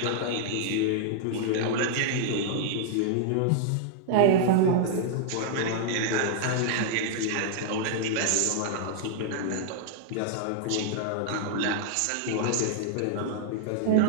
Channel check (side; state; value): both; different; correlation -0.01